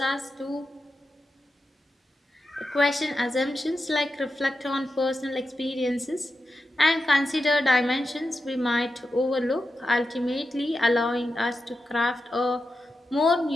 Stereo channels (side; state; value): both; normal; correlation 0.90